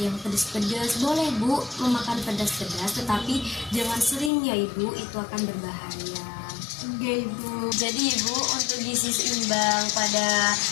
pedas-pedas. Boleh bu memakan pedas-pedas, tetapi jangan sering ya ibu, itu akan berbahaya. Iya ibu. Jadi ibu, untuk gizi seimbang pada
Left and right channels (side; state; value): right; drops out; at 4.3 s